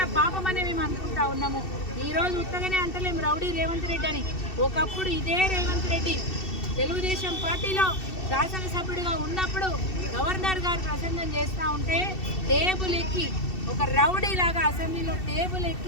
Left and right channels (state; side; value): late; right; 2.7 ms